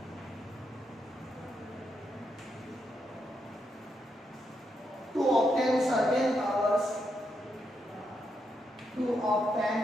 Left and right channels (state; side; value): normal; both; correlation 0.81